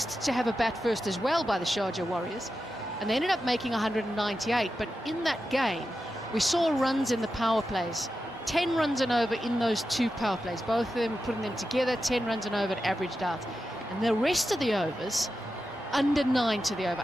to have a bat first as well by the Sharjah Warriors, and they ended up making 198. But in that game, we saw runs in the power plays. 10 runs and over in those 2 power plays. Both of them putting them together, 10 runs and over, averaged out. And the rest of the overs, under 9 to the over,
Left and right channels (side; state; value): both; normal; correlation 0.90